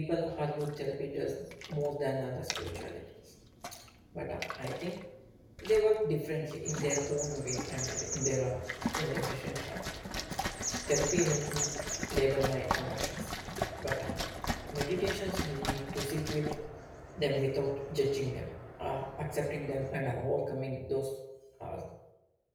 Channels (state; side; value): identical; both; correlation 1.00